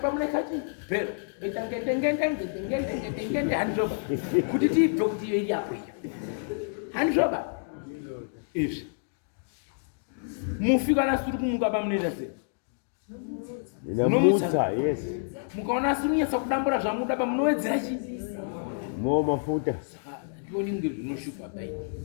muna ikati bhero itangendengende handizvoba kuti tiibve kuti iyo iri apo iyo handizvoba izvi mufi kana suri kumuka pamunoita sei Inamutsa, yes. mukaona asiri kunyatsa kudambura zvamuda pamunowedzera chi Mo mafuta. Ndioni unge zvinoshupa bai.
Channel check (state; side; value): silent; right; digital silence